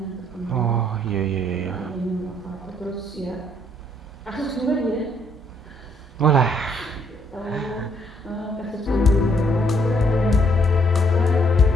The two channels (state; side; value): normal; both; correlation 0.68